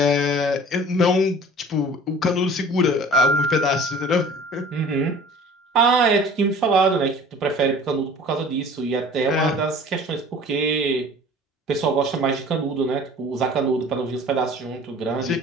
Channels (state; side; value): normal; both; correlation 0.46